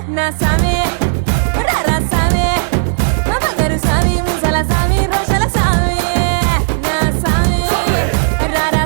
నా సామే రారా సామే మా బంగారు సామి ముసల సామి రోషల సామి నా సామి రారా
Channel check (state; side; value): silent; left; digital silence